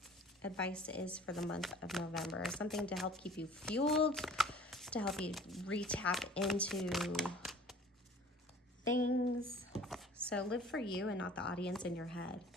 advice is for the month of November. Something to help keep you fueled, to help you re-tap into things. So live for you and not the audience in your head.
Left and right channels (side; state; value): both; normal; correlation 0.48